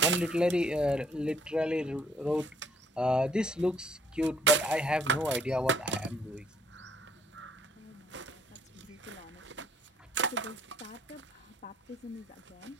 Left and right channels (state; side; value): normal; both; correlation 0.64